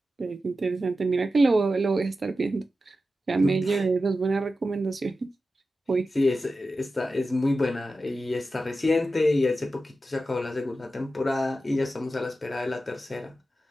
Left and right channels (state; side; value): normal; both; correlation 0.92